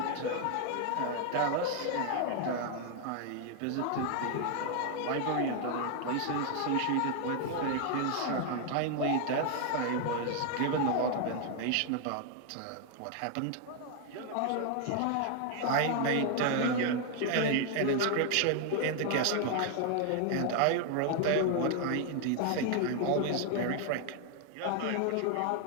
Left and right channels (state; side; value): different; both; correlation 0.00